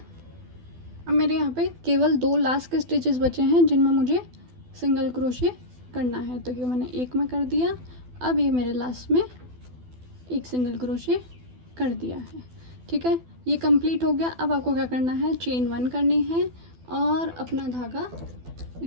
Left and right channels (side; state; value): left; late; 12 ms